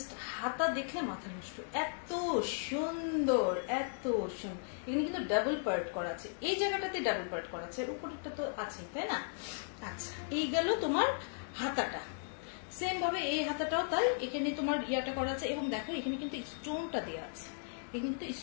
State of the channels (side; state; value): right; silent; digital silence